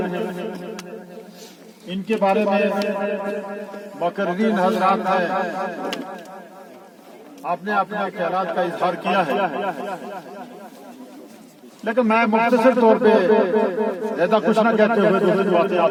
इनके बारे में मुकर्रीन हजरात ने आपने अपने ख्यालात का इजहार किया है, लेकिन मैं मुख्तसर तौर पे ज्यादा कुछ ना कहते हुए दूसरी बातें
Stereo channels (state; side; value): identical; both; correlation 1.00